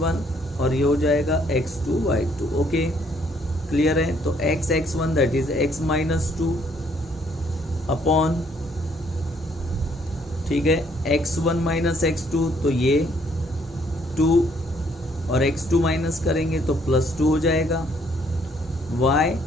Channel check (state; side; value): normal; both; correlation 0.66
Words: और ये हो जाएगा x2 y2। ओके, क्लियर है। तो x(x1) that is x minus 2 upon, ठीक है, x1 माइनस x2, तो ये 2 और x2 माइनस करेंगे तो +2 हो जाएगा, y